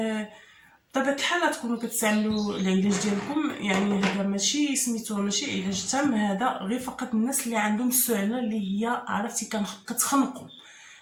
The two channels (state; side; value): identical; both; correlation 1.00